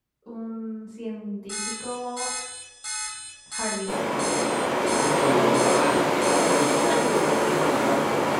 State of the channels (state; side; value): identical; both; correlation 1.00